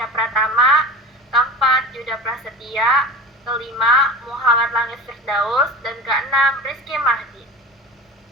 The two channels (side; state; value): both; normal; correlation 0.33